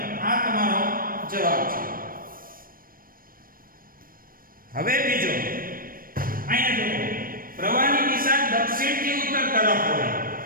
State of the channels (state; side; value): late; left; 0.41 ms